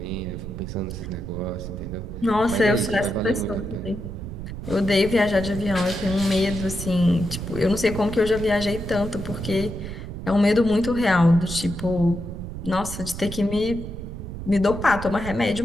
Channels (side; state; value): right; noise; rumble, 9 dB below the sound